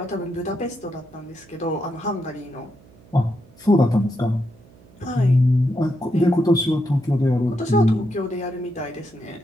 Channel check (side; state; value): right; noise; hum, 26 dB below the sound